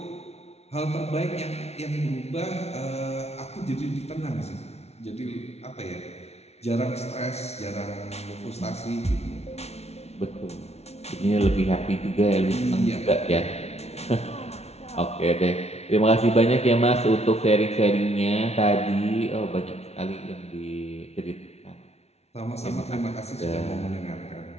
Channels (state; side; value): late; right; 0.31 ms